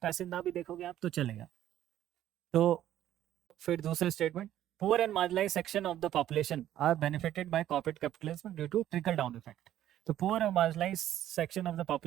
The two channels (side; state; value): left; quieter; 12.2 dB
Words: पैसेज ना भी देखोगे आप तो चलेगा। तो फिर दूसरे statement, poor and marginalise section of the population are benefited by corporate capitalism due to trickle down effect. तो पुअर और marginalise section of the